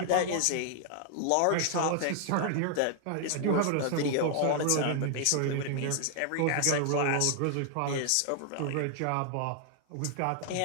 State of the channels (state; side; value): different; both; correlation 0.00